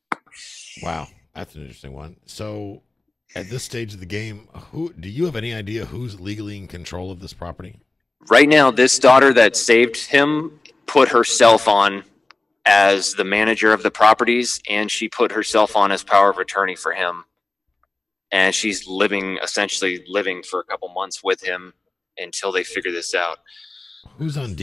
Wow, that's an interesting one. So at this stage of the game, do you have any idea who's legally in control of this property? Right now, this daughter that saved him put herself on as the manager of the properties, and she put herself on as power of attorney for him. And she's essentially living for a couple months with him until they figure this out. Who's on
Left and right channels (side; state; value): right; quieter; 3.1 dB